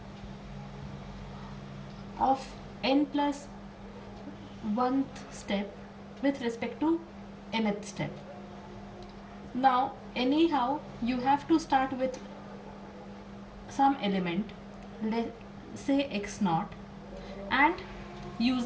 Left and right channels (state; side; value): identical; both; correlation 1.00